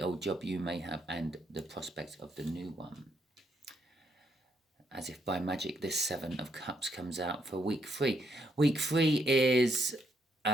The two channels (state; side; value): normal; both; correlation 0.76